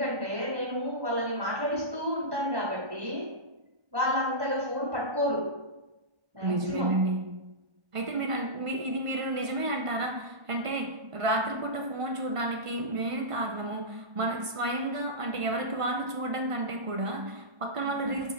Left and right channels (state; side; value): late; left; 1.5 ms